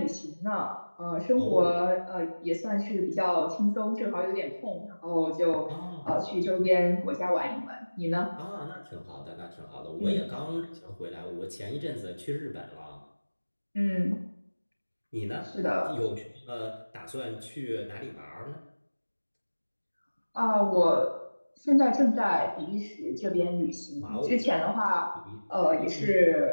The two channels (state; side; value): inverted; both; correlation -1.00